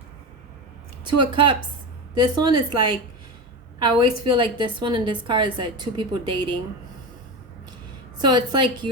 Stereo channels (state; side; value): normal; both; correlation 0.21